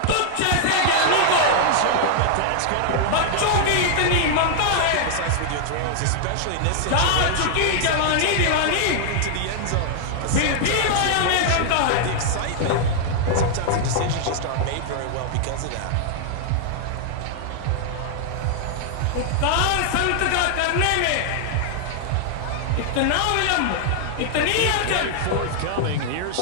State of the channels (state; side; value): different; both; correlation -0.01